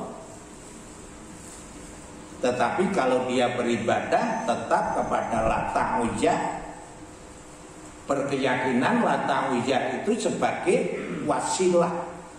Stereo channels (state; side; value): identical; both; correlation 1.00